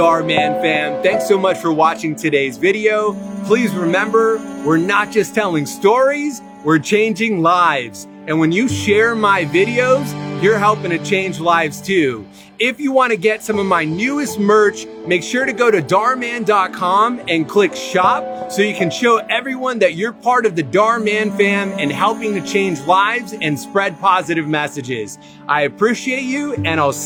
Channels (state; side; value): identical; both; correlation 1.00